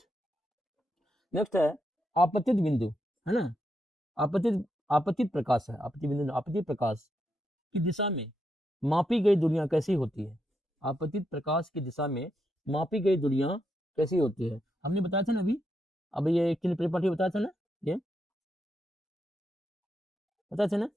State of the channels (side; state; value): both; normal; correlation 0.82